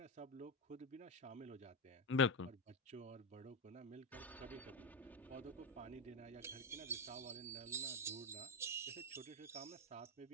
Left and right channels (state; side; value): normal; both; correlation 0.12